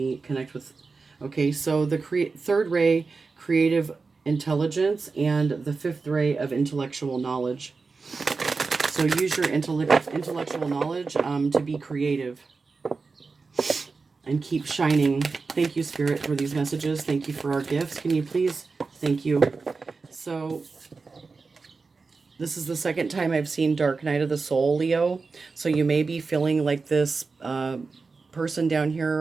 connect with... Okay, so the third ray, creative intelligence, and the fifth ray of intellectual knowledge. So use your intellectual knowledge to be creative and keep shining. Thank you, Spirit, for these messages. Thank you for our gifts. Can you please? Thank you. So this is the second time I've seen Dark Night of the Soul, Leo. So you may be feeling like this person down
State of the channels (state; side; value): quieter; left; 4.3 dB